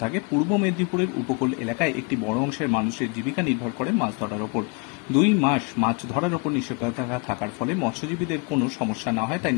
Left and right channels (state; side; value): quieter; right; 31.9 dB